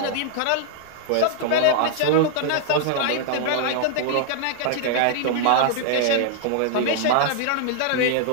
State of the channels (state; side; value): different; both; correlation -0.01